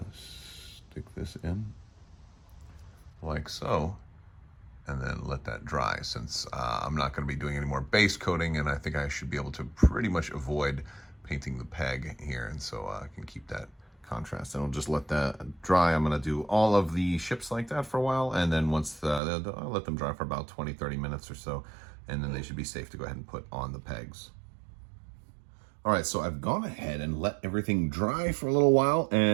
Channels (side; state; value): left; drops out; at 19.2 s